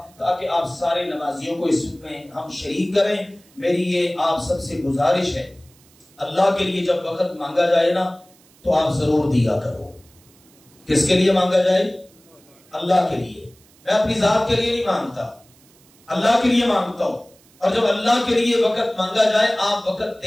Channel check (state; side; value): noise; right; hiss, 29 dB below the sound